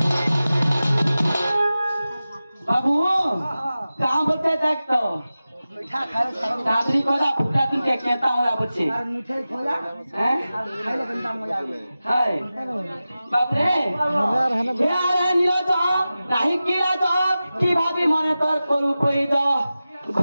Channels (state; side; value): inverted; both; correlation -0.95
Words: बाबू कहाँ बच्चे देख तो मीठा खाए सारा दादरी खोजा फुटा तुम के कहता हूँ बच्चे और मिठाई खोजा हैं और खाइले गंदा मजा आवे हाय बाप रे यार नीला तो नहीं किला तो की भाभी माने तोर करू कोई तो